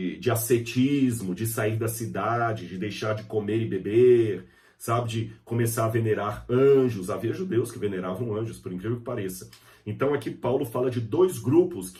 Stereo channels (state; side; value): identical; both; correlation 1.00